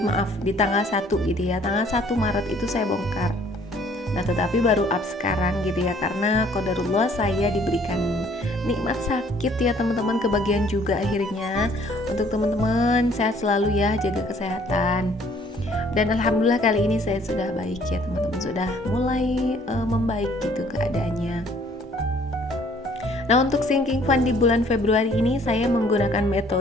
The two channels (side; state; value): both; normal; correlation 0.59